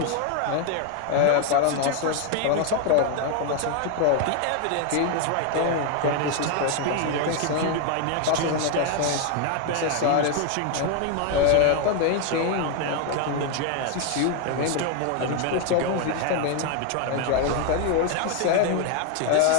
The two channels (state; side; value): different; both; correlation 0.01